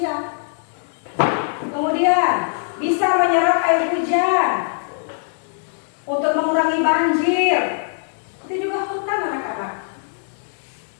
Kemudian bisa menyerap air hujan untuk mengurangi banjir. Itu juga hutan anak-anak.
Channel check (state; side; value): silent; right; digital silence